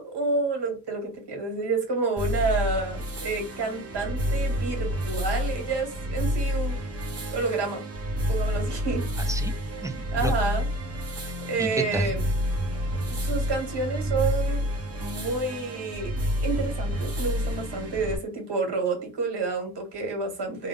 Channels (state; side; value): normal; both; correlation 0.39